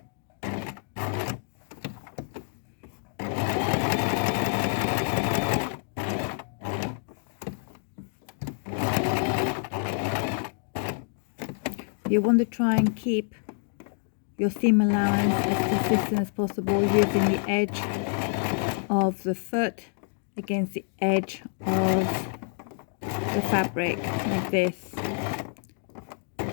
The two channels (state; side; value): silent; right; 56 dB below the other